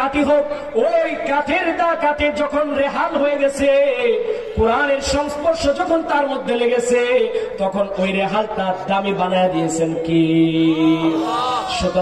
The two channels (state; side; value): identical; both; correlation 1.00